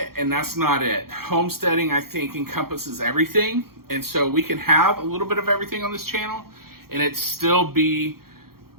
and that's not it. Homesteading, I think, encompasses everything, and so we can have a little bit of everything on this channel, and it still be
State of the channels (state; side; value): late; left; 0.93 ms